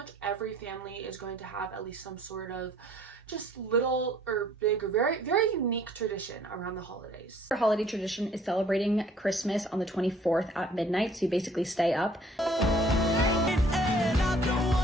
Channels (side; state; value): both; normal; correlation 0.57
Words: every family is going to have at least some sort of just little or big or very, very unique tradition around the holidays. Our holiday tradition is celebrating Christmas on the 24th at midnight, so you basically stay up.